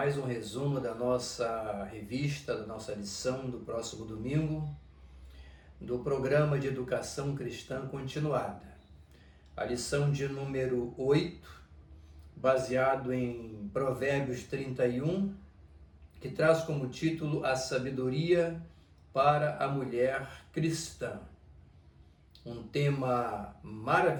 um resumo da nossa revista, da nossa lição do próximo domingo, do programa de educação cristã continuada. A lição de número 8, baseado em Provérbios 31, que traz como título A Sabedoria para a Mulher Cristã. Um tema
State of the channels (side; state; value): both; identical; correlation 1.00